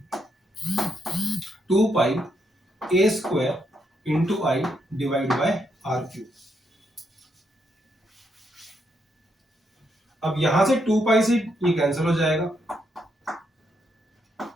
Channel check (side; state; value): both; normal; correlation 0.78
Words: 2 pi a square into I divide by R cube. अब यहां से 2 पाई से ये कैंसिल हो जाएगा,